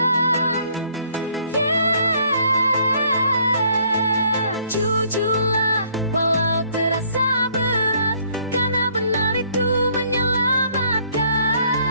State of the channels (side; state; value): both; inverted; correlation -0.64